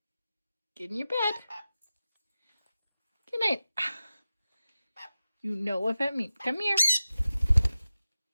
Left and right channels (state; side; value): inverted; both; correlation -0.94